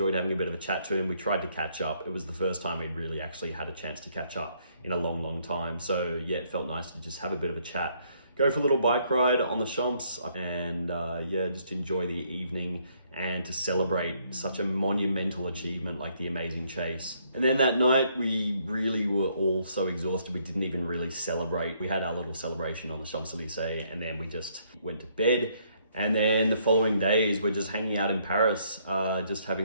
having a bit of a chat to him. We tried to catch up. It was the first time we'd really actually had a chance to catch up in a long, long time. So yeah, it felt nice to just have a bit of a chat, go for a little bike ride on the Champs, and yeah, just enjoy the evening and to celebrate such a monumental achievement like the amazing chase. And then that night, we really were all so exhausted, we didn't even really celebrate. We had our little celebration on the Champs-Élysées, and then we just went to bed. And then the following days, we're just hanging out in Paris, just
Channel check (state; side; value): inverted; both; correlation -0.69